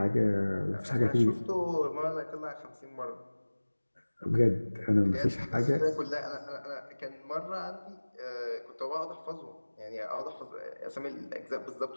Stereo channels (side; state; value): both; inverted; correlation -1.00